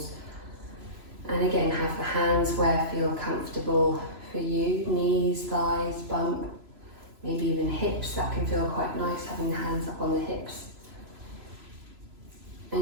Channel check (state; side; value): late; left; 3.0 ms